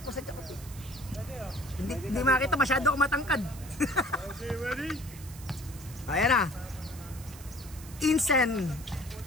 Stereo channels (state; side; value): noise; right; hiss, 17 dB below the sound